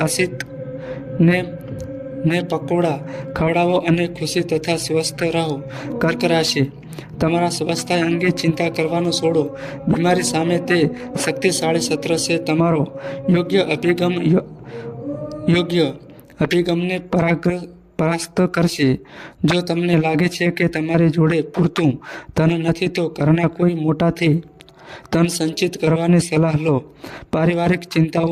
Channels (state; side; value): identical; both; correlation 1.00